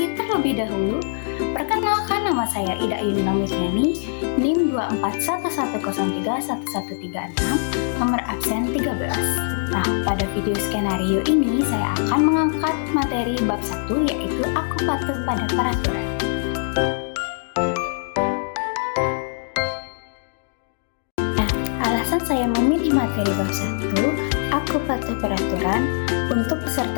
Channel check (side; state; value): right; silent; 64 dB below the other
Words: terlebih dahulu. Perkenalkan, nama saya Ida Yunina Mitriani, NIM 241103136, nomor absen 13. Nah, pada video skenario ini saya akan mengangkat materi bab 1, yaitu aku patuh pada peraturan. Nah, alasan saya memilih materi bab 1, aku patuh peraturan, untuk